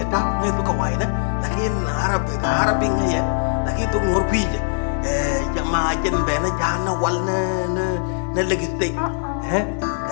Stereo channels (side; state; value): right; silent; 65 dB below the other